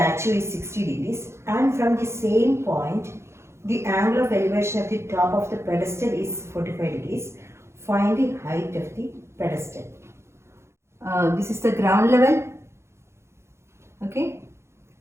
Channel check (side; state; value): left; late; 0.13 ms